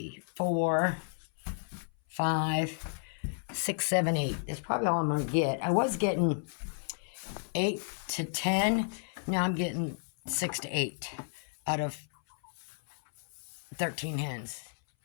4, 5, 6, 7, 8. That's probably all I'm going to get. I was getting 8 to 10. Now I'm getting 6 to 8 out of 13 hens.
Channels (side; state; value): right; silent; 56 dB below the other